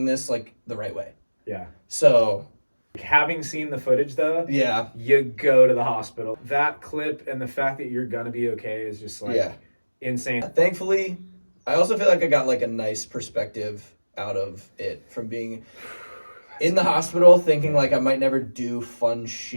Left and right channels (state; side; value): inverted; both; correlation -1.00